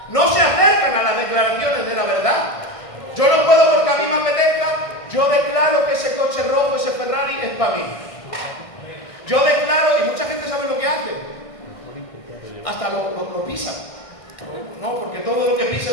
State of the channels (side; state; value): right; late; 1.6 ms